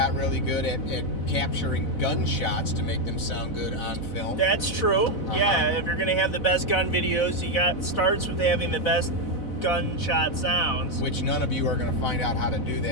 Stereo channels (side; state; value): right; late; 4.0 ms